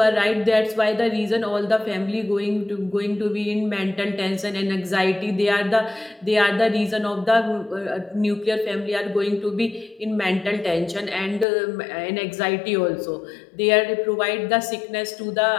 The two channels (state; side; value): drops out; right; at 11.5 s